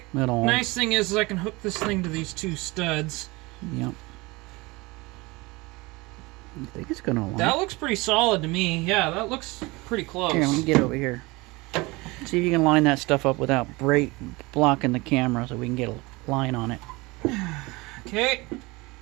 Metal. Nice thing is I can hook this thing to these 2 studs. Yep. I think it's going to align. That looks pretty solid to me. Yeah, that looks pretty close. Here, let me get over here. See if you can line that stuff up without blocking the camera so we can get a line on it. Okay.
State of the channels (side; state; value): left; quieter; 23.5 dB